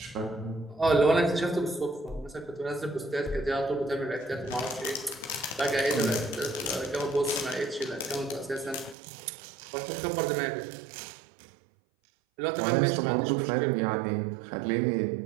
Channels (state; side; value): drops out; left; at 9.0 s